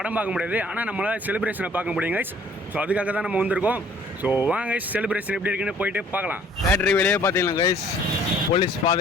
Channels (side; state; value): both; normal; correlation 0.56